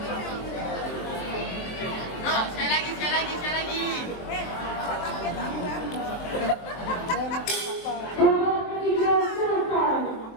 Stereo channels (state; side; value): late; right; 23 ms